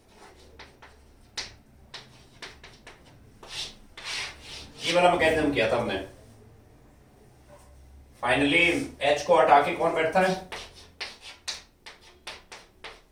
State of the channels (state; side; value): identical; both; correlation 1.00